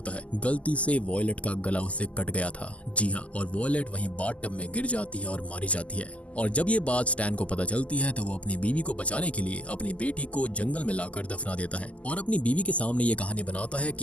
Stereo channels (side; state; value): right; late; 0.066 ms